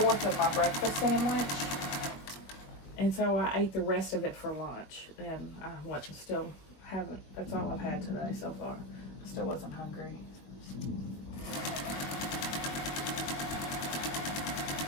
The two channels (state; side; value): late; right; 21 ms